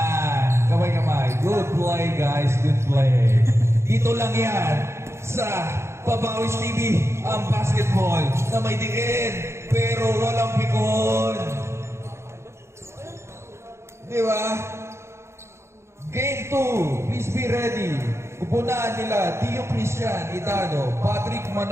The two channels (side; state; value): left; late; 0.13 ms